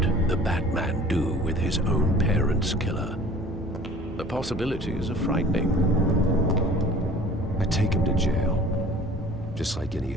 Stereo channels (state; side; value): normal; both; correlation 0.47